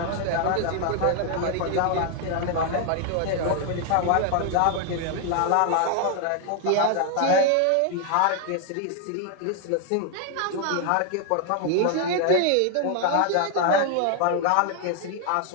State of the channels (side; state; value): both; different; correlation 0.00